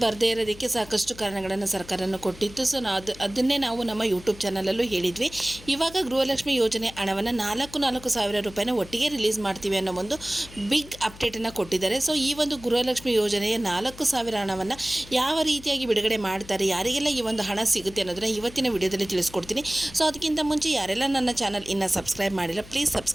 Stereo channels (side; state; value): left; noise; hum, 18 dB below the sound